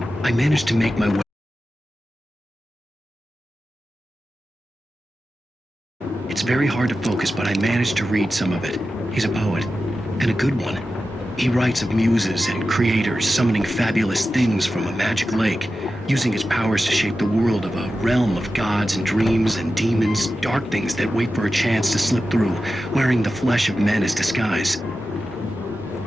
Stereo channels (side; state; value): both; normal; correlation 0.92